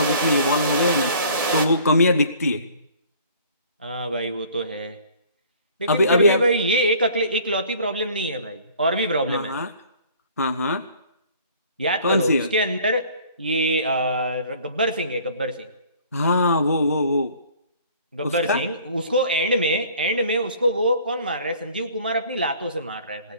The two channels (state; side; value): inverted; both; correlation -0.52